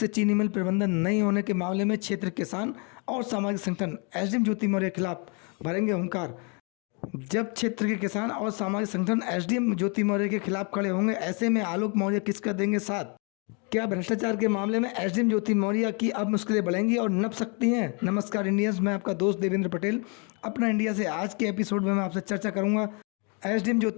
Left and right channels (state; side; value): quieter; right; 34.7 dB